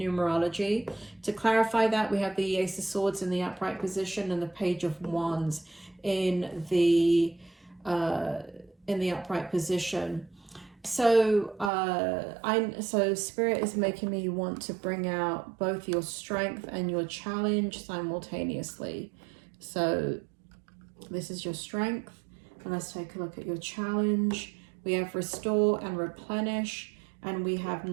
To clarify that, we have the Ace of Swords in the upright position and the Page of Wands in the upright position. So so Spirit is making me want to bring out both your strength and your challenge simultaneously. So this is your strength, and let's take a look at your challenge. We have Restore and Replenish, and we have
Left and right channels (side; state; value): left; drops out; at 11.7 s